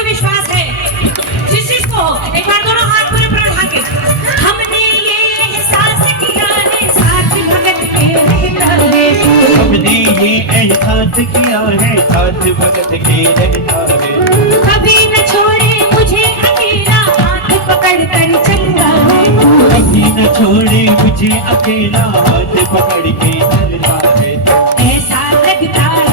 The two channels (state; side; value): normal; both; correlation -0.08